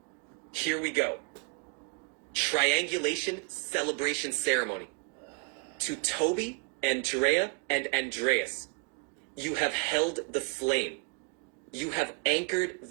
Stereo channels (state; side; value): quieter; left; 33.0 dB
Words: Here we go. Triangulation celebration ceremony. To Toby, Andrea, and Andreas, you have held the flame. You have anchored